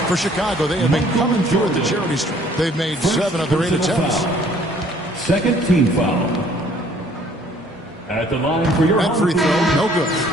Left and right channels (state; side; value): normal; both; correlation 0.58